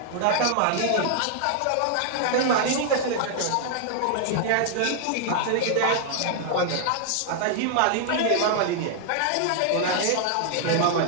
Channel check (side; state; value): both; different; correlation -0.01